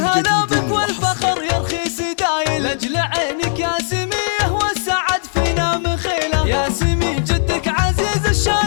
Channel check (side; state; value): right; silent; digital silence